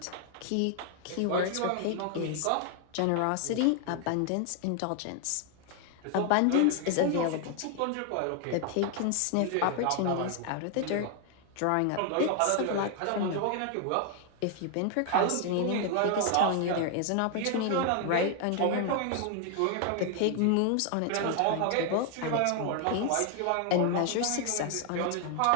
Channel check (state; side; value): different; both; correlation 0.00